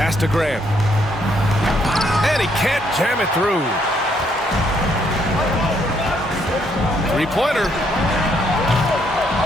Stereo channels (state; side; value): normal; both; correlation 0.71